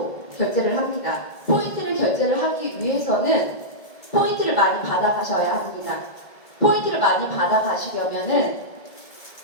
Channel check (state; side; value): late; right; 1.7 ms